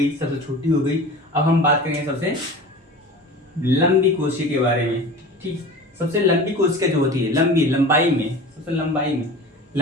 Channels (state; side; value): normal; both; correlation 0.36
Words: सबसे छोटी हो गई, अब हम बात करेंगे सबसे लंबी कोशिका के बारे में। ठीक, सबसे लंबी कोशिका जो होती है, लंबाई में सबसे